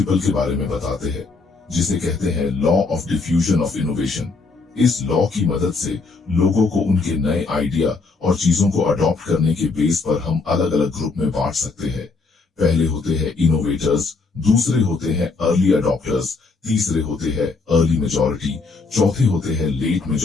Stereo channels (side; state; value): right; quieter; 4.1 dB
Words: के बारे में बताते हैं, जिसे कहते हैं law of diffusion of innovation. इस लॉ की मदद से लोगों को उनके नए आइडिया और चीजों को अडॉप्ट करने के बेस पर हम अलग अलग ग्रुप में बांट सकते हैं। पहले होते हैं इनोवेटर्स, दूसरे होते हैं अर्ली अडॉप्टर्स, तीसरे होते हैं अर्ली मेजॉरिटी, चौथे होते हैं लेट